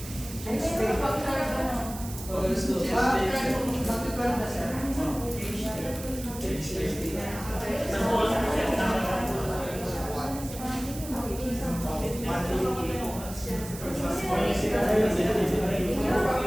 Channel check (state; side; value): noise; right; hiss, 13 dB below the sound